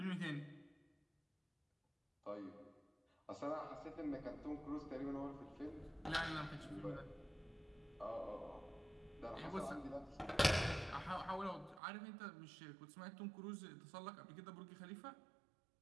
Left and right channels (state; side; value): drops out; left; at 11.8 s